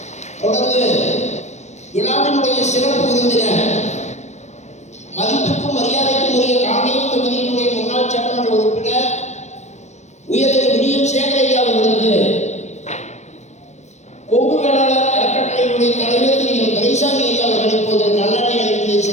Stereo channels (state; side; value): late; right; 0.33 ms